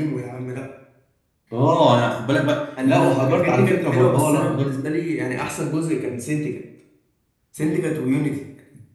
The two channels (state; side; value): identical; both; correlation 1.00